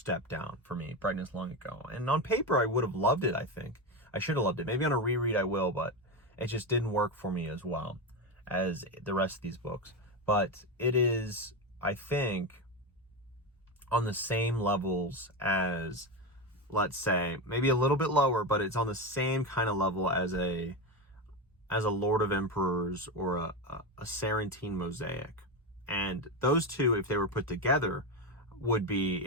down for me, Brightness Long Ago. And on paper, I would have loved it, I think. I should have loved it. Maybe on a reread I will, but it just didn't work for me as well as the rest of these books. But it is, I think, on the same levels as, let's say, maybe a little bit lower, but it's on the same kind of level as a Lord of Emperors or a Sarantine Mosaic. And those two, if they were put together, would be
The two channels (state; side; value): normal; both; correlation 0.16